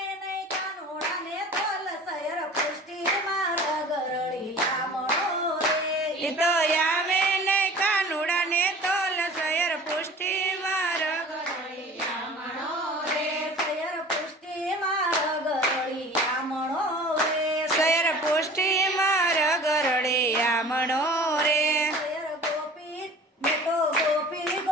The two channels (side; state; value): both; normal; correlation 0.43